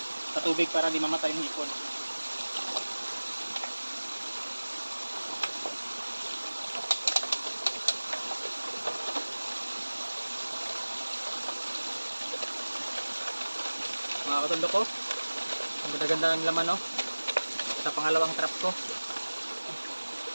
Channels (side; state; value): both; inverted; correlation -1.00